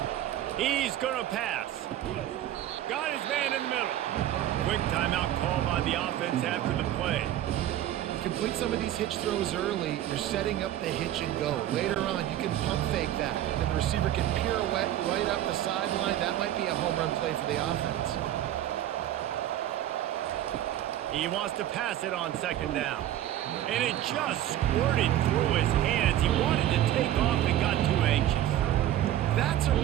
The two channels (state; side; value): quieter; left; 12.6 dB